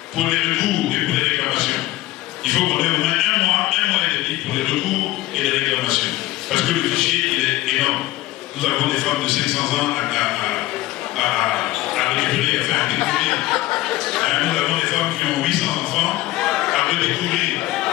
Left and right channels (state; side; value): quieter; right; 17.0 dB